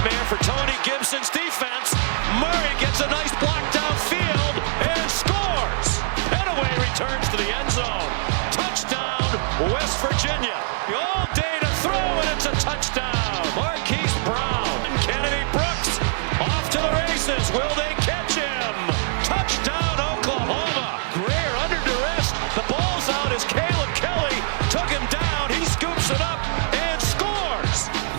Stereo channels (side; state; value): left; silent; digital silence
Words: for Tony Gibson's defense. Murray gets a nice block downfield and scores. Petaway returns to the end zone. Touchdown, West Virginia. All day to throw, and it's a touchdown. Marquise Brown and Kennedy Brooks off to the races. Will they catch him? Touchdown, Oklahoma. Greer under duress. The ball's out as Caleb Kelly took him down. He scoops it up and scores.